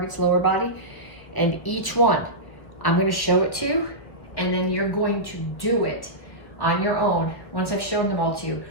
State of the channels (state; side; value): late; right; 1.4 ms